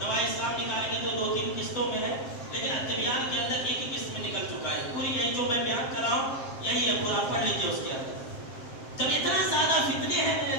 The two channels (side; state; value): right; late; 7.5 ms